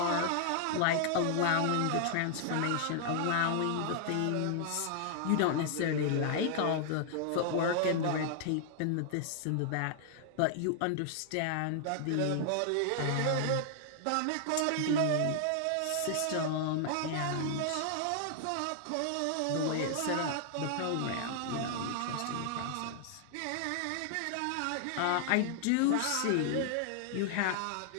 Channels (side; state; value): both; different; correlation 0.00